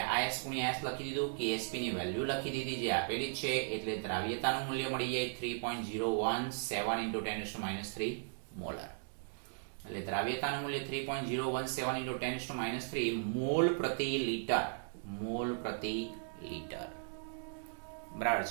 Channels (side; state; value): left; silent; digital silence